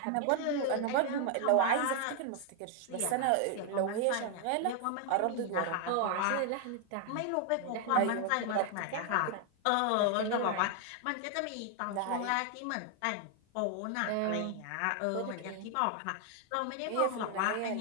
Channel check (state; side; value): different; both; correlation 0.00